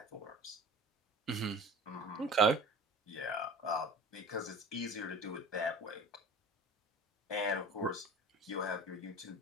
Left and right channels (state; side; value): normal; both; correlation 0.39